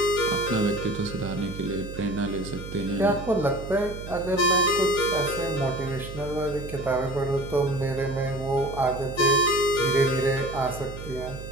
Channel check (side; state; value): right; noise; hum, 11 dB below the sound